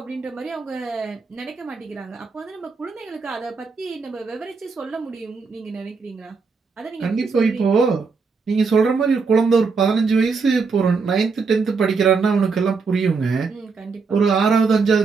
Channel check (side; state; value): left; quieter; 4.8 dB